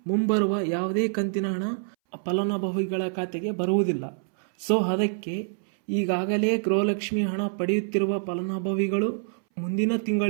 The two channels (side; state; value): left; silent; 61 dB below the other